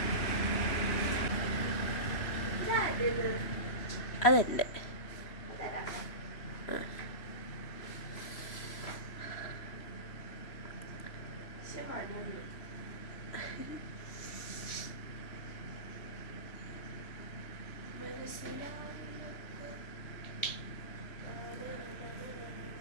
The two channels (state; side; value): late; right; 3.0 ms